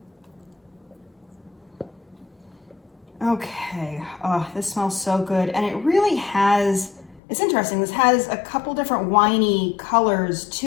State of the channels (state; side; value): drops out; right; at 7.2 s